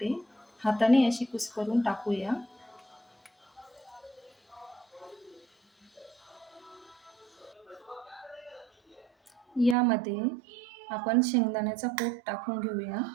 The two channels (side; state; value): left; drops out; at 9.8 s